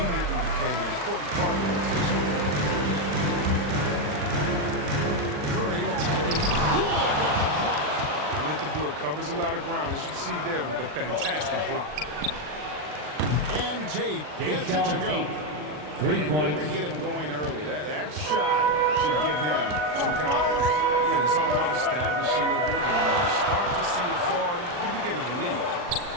became an important part of the rotation. Curry attacking. Wood with the block. Atlanta Wood covers a lot of ground, as you see there, with a fantastic block. And Tate gets it to go. 3 points. Good to get him going early. That shot should give him some confidence. Yeah, it's all about establishing a rhythm. And when you start to see it fall, you begin to believe.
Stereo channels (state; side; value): late; left; 40 ms